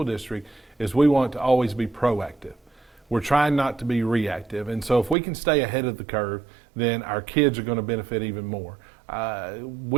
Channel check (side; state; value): left; drops out; at 5.2 s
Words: District is we want to always be proactive. We're trying not to be reactive, and so if we can stay ahead of the curve, then our kids are going to benefit even more.